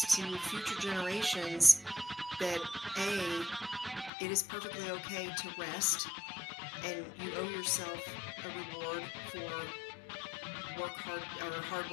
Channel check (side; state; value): right; drops out; at 4.1 s